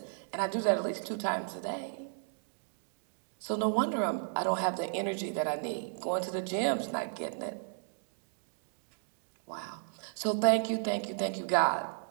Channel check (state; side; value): silent; left; digital silence